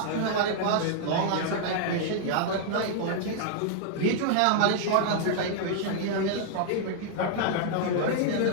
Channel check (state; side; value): different; both; correlation -0.01